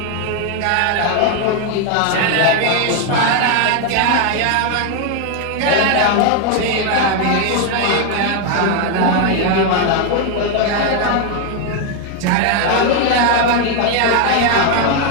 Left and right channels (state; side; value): different; both; correlation 0.01